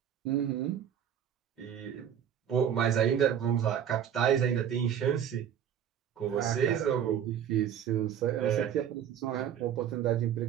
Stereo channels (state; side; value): quieter; left; 9.2 dB